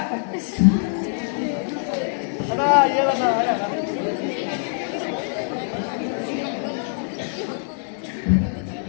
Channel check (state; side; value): silent; right; digital silence